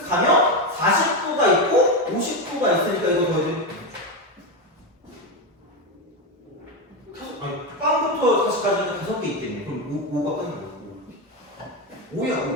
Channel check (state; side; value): normal; both; correlation 0.11